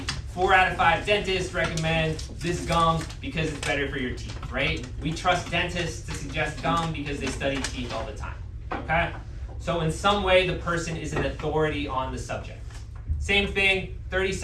4 out of 5 dentists recommend this gum because it's better for your teeth, right? We trust dentists to suggest gum because they study teeth all the time, okay? So in some way, the person is an authority on the subject. Same thing, 30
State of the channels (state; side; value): identical; both; correlation 1.00